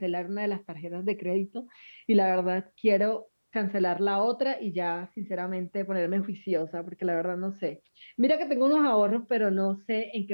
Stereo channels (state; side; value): inverted; both; correlation -1.00